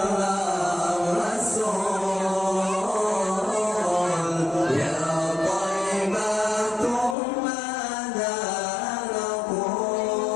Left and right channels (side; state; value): right; drops out; at 7.2 s